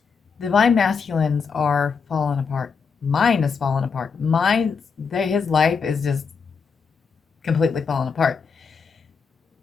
Divine masculines are falling apart. Mine is falling apart. His life is just completely falling apart.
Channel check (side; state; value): right; quieter; 5.6 dB